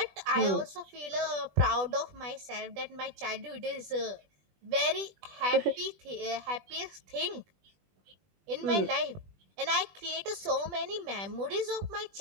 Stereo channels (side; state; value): left; late; 20 ms